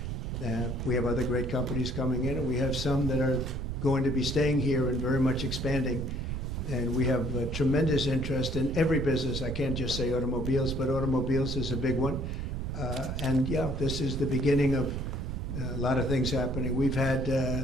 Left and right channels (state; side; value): noise; right; rumble, 4 dB below the sound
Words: We have other great companies coming in, and we have some that are going to be staying here and very much expanding. And we have tremendous interest in every business. I can't just say automobiles, but automobiles is a big one. And yeah, this is the beginning of a lot of things happening. We've had,